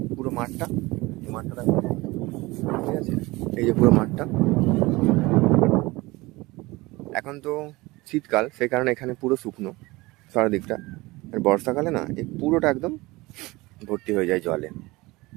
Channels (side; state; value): left; quieter; 21.6 dB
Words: পুরো মাঠটা, এই মাঠটা ঠিক আছে, এই যে পুরো মাঠটা। এখন তো শীতকাল, সেই কারণে এখানে পুরো শুকনো চারদিকটা। আর বর্ষাকালে না এই পুরোটা একদম ভর্তি হয়ে যায় জলে।